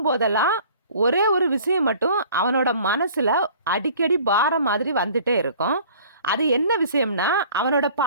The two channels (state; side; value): inverted; both; correlation -0.49